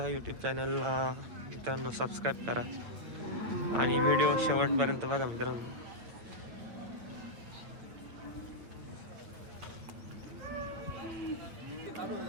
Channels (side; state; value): left; late; 9.0 ms